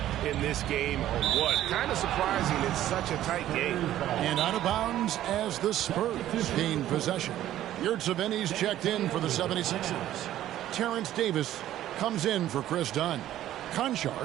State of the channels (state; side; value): quieter; left; 12.9 dB